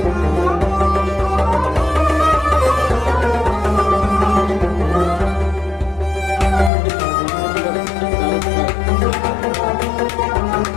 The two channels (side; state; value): right; drops out; at 6.7 s